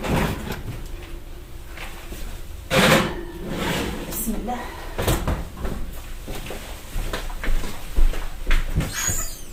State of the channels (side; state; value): both; identical; correlation 1.00